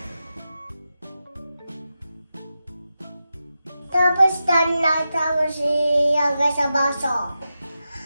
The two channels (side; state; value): both; inverted; correlation -0.90